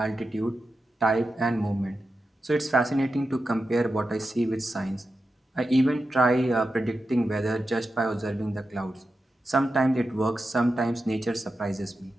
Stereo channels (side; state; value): both; normal; correlation 0.90